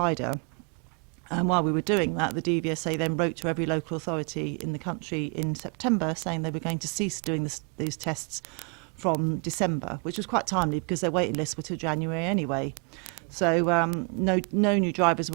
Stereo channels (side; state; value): left; quieter; 36.4 dB